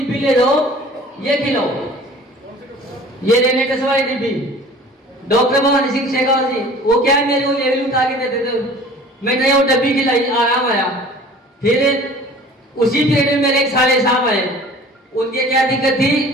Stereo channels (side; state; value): both; normal; correlation 0.46